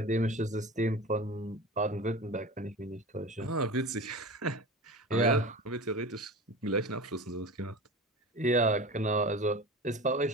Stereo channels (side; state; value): both; normal; correlation 0.33